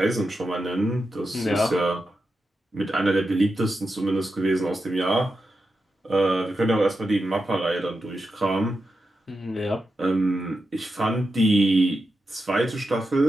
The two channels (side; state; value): both; normal; correlation 0.88